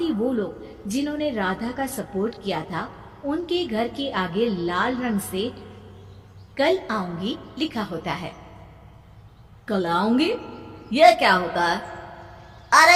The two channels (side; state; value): both; identical; correlation 1.00